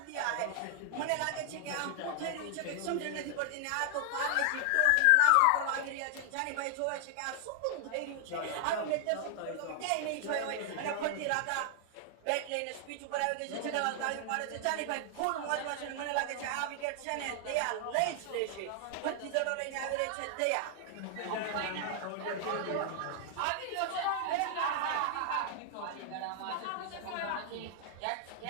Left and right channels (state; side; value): different; both; correlation 0.00